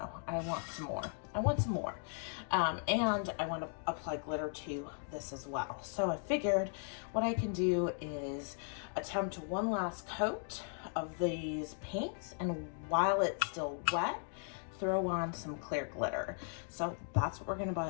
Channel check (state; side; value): silent; right; 53 dB below the other